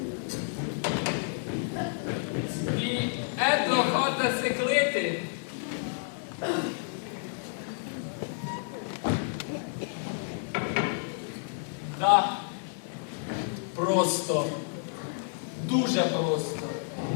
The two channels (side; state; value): right; silent; 58 dB below the other